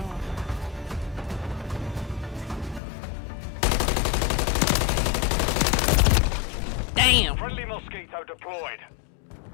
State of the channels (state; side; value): drops out; right; at 2.8 s